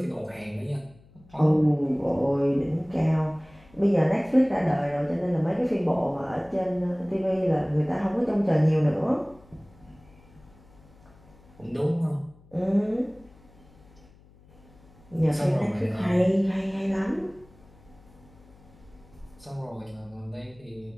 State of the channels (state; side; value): noise; left; hum, 26 dB below the sound